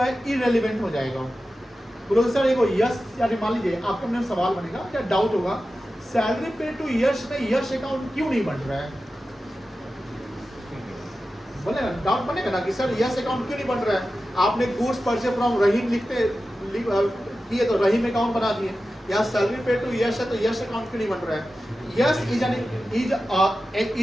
इरेलीवेंट हो जाएगा। बोलो सर एक यश, यानी मान लीजिए आपके मन में सवाल बनेगा या डाउट होगा, सैलरी पेड टू यश में यश अकाउंट क्यों नहीं बन रहा है? बोलेगा, डाउट बनेगा ना कि सर यश अकाउंट क्यों नहीं बन रहा है? आपने गुड्स परचेज फ्रॉम रहीम किए तो रहीम अकाउंट बना दिए। यहाँ सैलरी पेड टू यश है तो यश अकाउंट क्यों नहीं बन रहा है? Yash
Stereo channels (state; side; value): normal; both; correlation 0.93